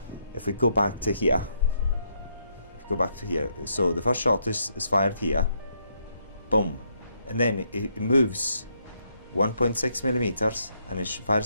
if we go back to here, so the first shot is fired here, boom, and then it moves 1.6 millimeters and it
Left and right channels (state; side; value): inverted; both; correlation -0.75